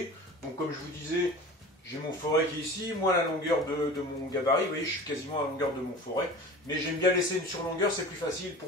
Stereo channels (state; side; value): normal; both; correlation 0.37